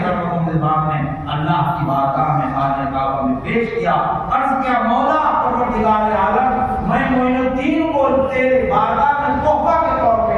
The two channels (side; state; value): both; identical; correlation 1.00